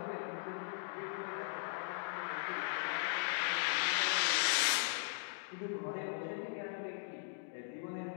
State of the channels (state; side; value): silent; right; digital silence